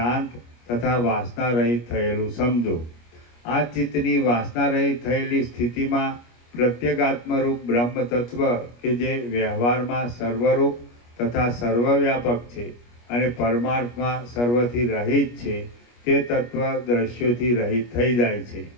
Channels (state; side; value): late; right; 25 ms